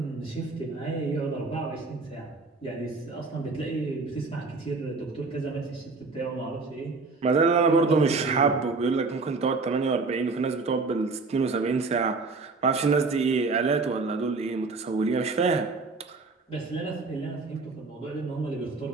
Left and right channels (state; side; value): quieter; left; 3.9 dB